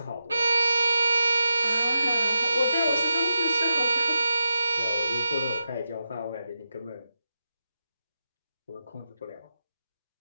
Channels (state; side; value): inverted; both; correlation -0.86